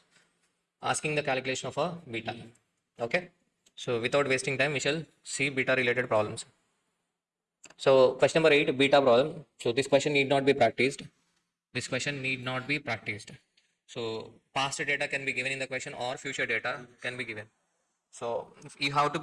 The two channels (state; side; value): identical; both; correlation 1.00